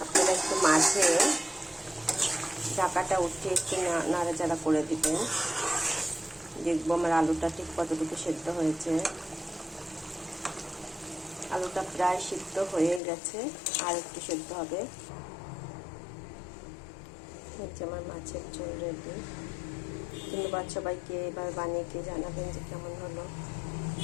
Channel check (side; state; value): right; drops out; at 13.0 s